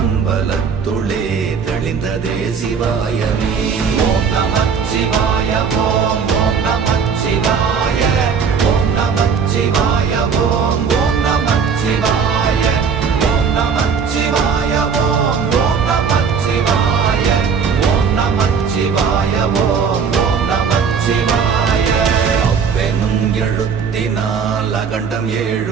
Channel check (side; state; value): left; quieter; 6.2 dB